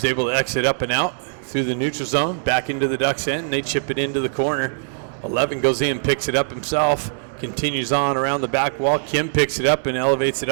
able to exit up and out through the neutral zone, back into the Ducks' end, and they chip it into the corner. 11 goes in, picks it up himself, continues on around the back wall. Kim picks it up and elevates it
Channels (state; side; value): silent; left; digital silence